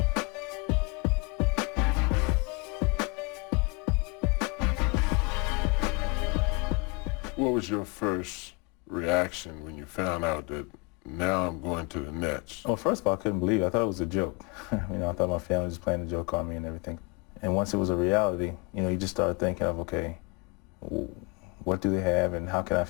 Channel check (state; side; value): quieter; right; 28.4 dB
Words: What was your first reaction when you found out that now I'm going to the Nets? Well, first of all, I couldn't believe it. I thought it was a joke. I thought my family was playing a joke on me and everything. And once it was a reality, you just started thinking of, okay, what do they have and how can I